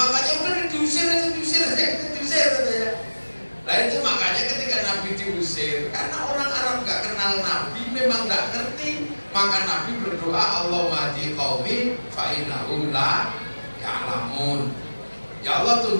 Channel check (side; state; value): both; inverted; correlation -1.00